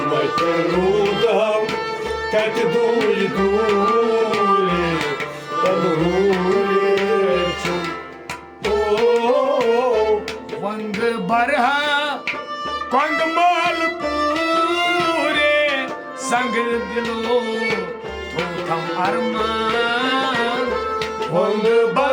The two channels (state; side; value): identical; both; correlation 1.00